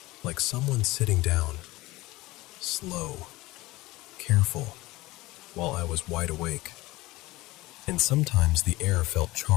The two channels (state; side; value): quieter; right; 19.7 dB